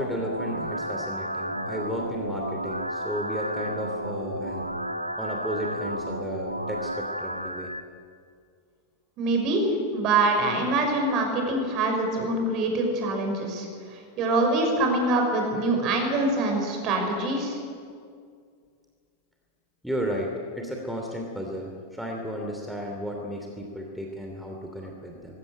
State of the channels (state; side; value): normal; both; correlation 0.10